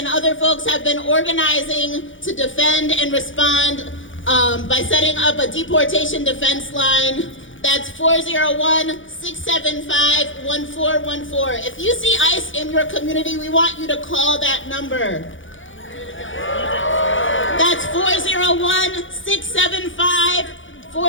other folks have been organizing to defend and respond by setting up a deportation defense line. That's 401-675-1414. If you see ICE in your community, we want you to call that number. That's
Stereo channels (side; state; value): right; late; 0.56 ms